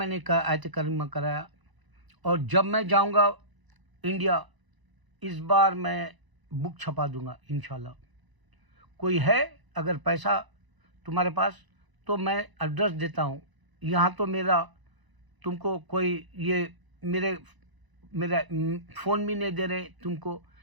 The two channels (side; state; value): left; late; 1.0 ms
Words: आयत करीमा कराया। और जब मैं जाऊंगा इंडिया, इस बार मैं बुक छपा दूंगा इंशाल्लाह। कोई है अगर पैसा तुम्हारे पास तो मैं एड्रेस देता हूँ। यहाँ तो मेरा तुमको कोई ये मेरा फ़ोन भी नहीं दे रहे तुमको,